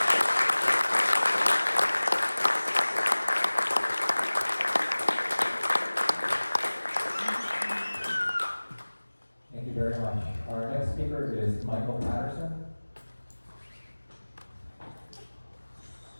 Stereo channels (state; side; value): inverted; both; correlation -1.00